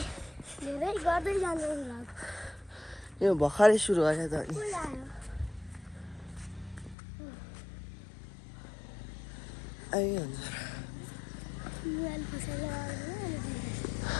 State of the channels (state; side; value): drops out; right; at 7.0 s